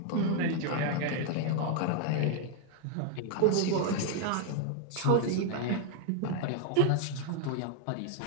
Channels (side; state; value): both; different; correlation 0.01